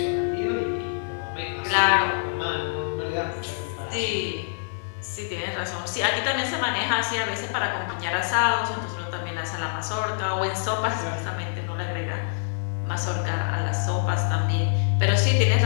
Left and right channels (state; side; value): silent; right; digital silence